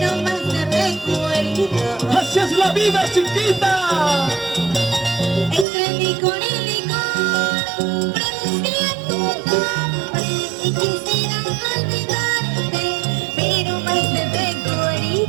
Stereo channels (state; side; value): drops out; left; at 5.7 s